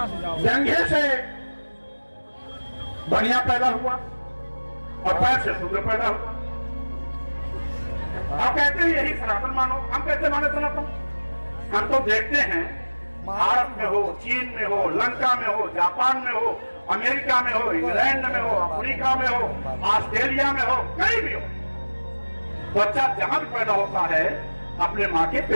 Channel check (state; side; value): inverted; both; correlation -1.00